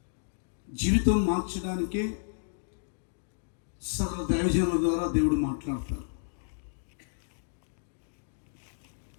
జీవితం మార్చడానికే సకల దైవజనుల ద్వారా దేవుడు మాట్లాడతారు.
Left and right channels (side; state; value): right; silent; digital silence